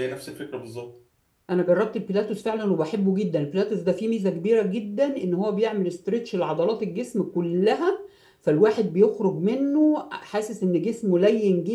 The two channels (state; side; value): identical; both; correlation 1.00